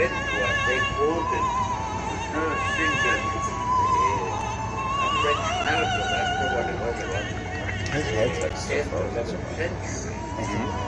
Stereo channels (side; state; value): both; identical; correlation 1.00